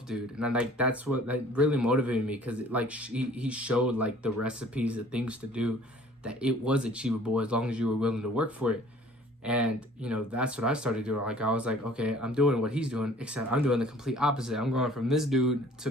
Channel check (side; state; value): both; normal; correlation 0.52